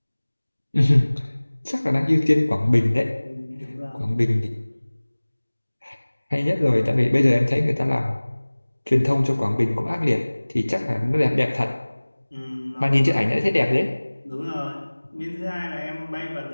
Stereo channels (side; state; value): both; inverted; correlation -1.00